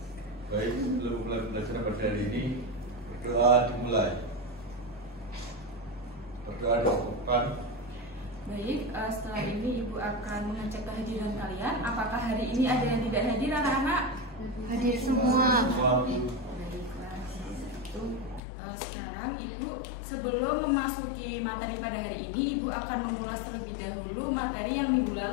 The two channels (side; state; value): right; drops out; at 18.4 s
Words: Baik, sebelum mulai pembelajaran pada hari ini, berdoa dimulai. Berdoa dilakukan. Baik, setelah ini Ibu akan mengecek kehadiran kalian. Apakah hari ini ada yang tidak hadir, anak-anak? Hadir semua. Baiklah. Sekarang Ibu sebelum memasuki materi pada hari ini, Ibu akan memulas terlebih dahulu materi yang minggu